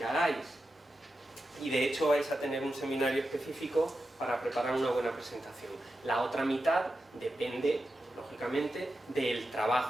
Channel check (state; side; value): normal; both; correlation 0.90